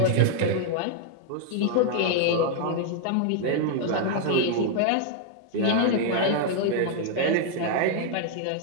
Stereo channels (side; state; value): both; different; correlation 0.00